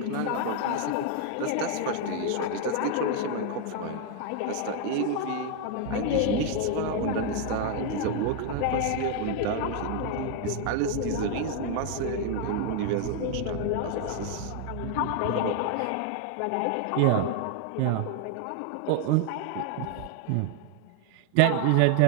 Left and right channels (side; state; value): both; different; correlation 0.00